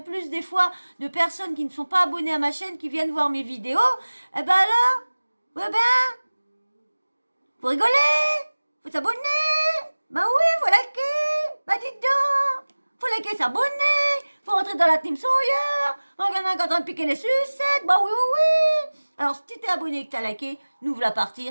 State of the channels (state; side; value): inverted; both; correlation -1.00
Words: plus des fois de personnes qui ne sont pas abonnées à ma chaîne qui viennent voir mes vidéos. Eh ben alors, ouais ben, faut rigoler, faut s'abonner. Ben oui, faut liker. Ben dites donc, faut liker, s'abonner. Faut rentrer dans la team Sawyer. On en a en train de piquer les sucettes. Ben oui, oui, oui. Alors si t'es abonné et que t'as liké, nous voilà partir